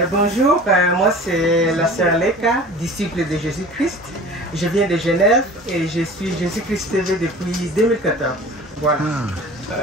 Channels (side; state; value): both; normal; correlation 0.41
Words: Bonjour, moi c'est la sœur Leka, disciple de Jésus-Christ. Je viens de Genève et je suis Jésus-Christ TV depuis 2014. Voilà.